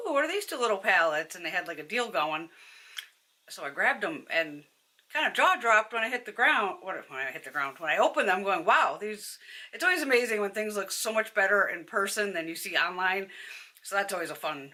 what are these two little palettes? And they had like a deal going. So I grabbed them and kind of jaw dropped when I hit the ground. When I opened them, going, wow, these. It's always amazing when things look so much better in person than you see online. So that's always a fun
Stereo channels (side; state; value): both; identical; correlation 1.00